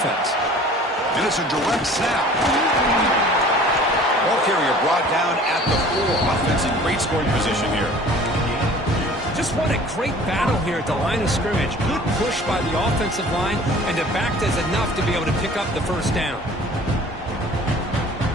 And it's a direct snap. Ball carrier brought down at the 4. Offense in great scoring position here. Just what a great battle here at the line of scrimmage. Good push by the offensive line, and the back does enough to be able to pick up the first down.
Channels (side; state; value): both; normal; correlation 0.47